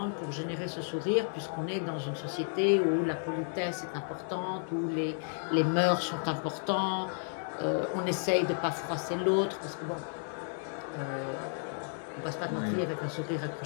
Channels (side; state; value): right; silent; 56 dB below the other